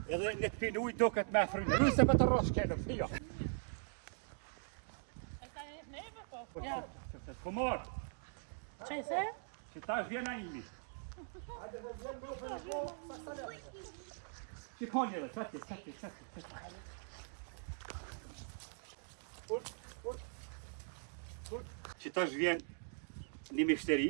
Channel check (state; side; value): silent; left; digital silence